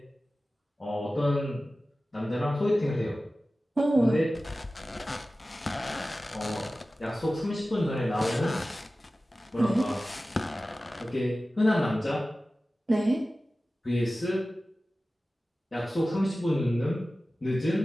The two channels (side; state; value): both; normal; correlation 0.96